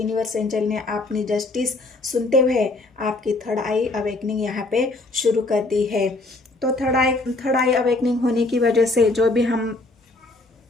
एंजल ने अपनी जस्टिस सुनते हुए आपकी थर्ड आई अवेकनिंग यहाँ पे शुरू कर दी है। तो थर्ड आई अवेकनिंग होने की वजह से जो भी हम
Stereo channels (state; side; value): quieter; right; 3.1 dB